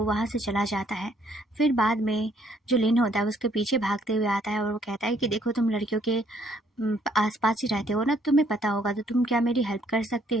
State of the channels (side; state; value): both; normal; correlation 0.66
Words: वहाँ से चला जाता है। फिर बाद में जो लिन होता है उसके पीछे भागते हुए आता है और वो कहता है कि देखो तुम लड़कियों के आसपास ही रहते हो ना, तुम्हें पता होगा, तो तुम क्या मेरी हेल्प कर सकते